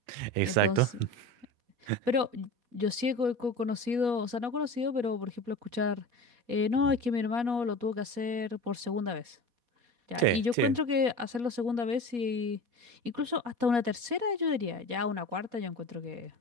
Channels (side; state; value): left; late; 4.2 ms